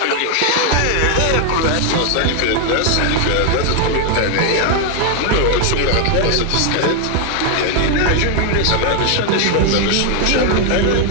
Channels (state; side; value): different; both; correlation 0.00